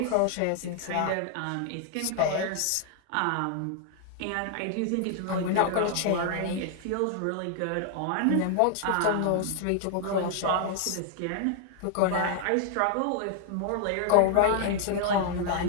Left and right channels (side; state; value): both; different; correlation 0.00